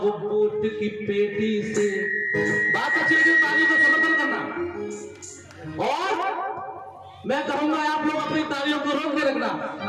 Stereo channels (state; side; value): identical; both; correlation 1.00